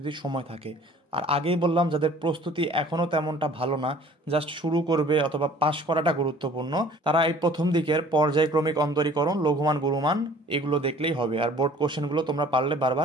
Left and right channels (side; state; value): both; normal; correlation 0.51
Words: সময় থাকে। আর আগেই বললাম যাদের প্রস্তুতি এখনও তেমনটা ভালো না, জাস্ট শুরু করবে অথবা পাশ করাটা গুরুত্বপূর্ণ, তারা এই প্রথম দিকের পর্যায়ক্রমিক অন্তরীকরণ, লঘুমান গুরুমান এগুলো দেখলেই হবে। আর বোর্ড কোশ্চেনগুলো তোমরা পারলে